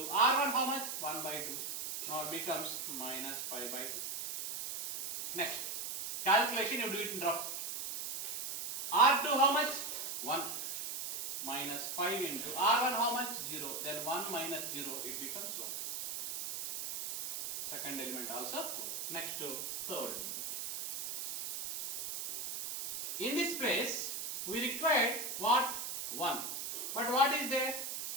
R1 how much? 1 by 2. Now it becomes minus 5 by 2. Next. Calculation you do it in rough. R2 how much? 1. Minus 5 into R1 how much? 0. Then 1 minus 0 it becomes 1. Second element also. Next to third element. In this place we required what? 1. But what is there?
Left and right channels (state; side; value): noise; right; hiss, 4 dB below the sound